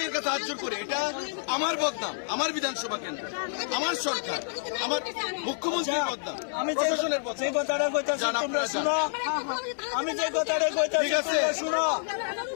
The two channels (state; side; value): silent; right; 59 dB below the other